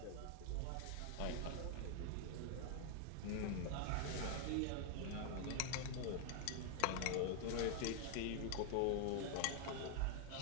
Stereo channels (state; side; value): different; both; correlation 0.00